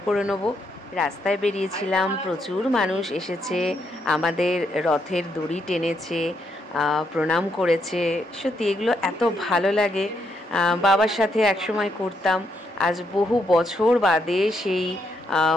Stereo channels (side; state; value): both; normal; correlation 0.77